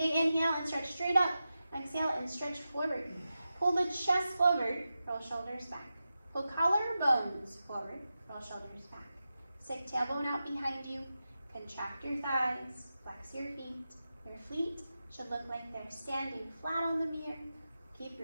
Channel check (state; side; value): inverted; both; correlation -0.92